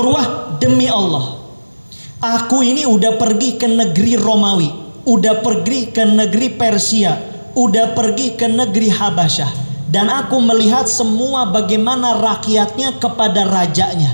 demi Allah, aku ini udah pergi ke negeri Romawi, udah pergi ke negeri Persia, udah pergi ke negeri Habasyah, dan aku melihat semua bagaimana rakyatnya kepada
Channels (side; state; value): both; inverted; correlation -1.00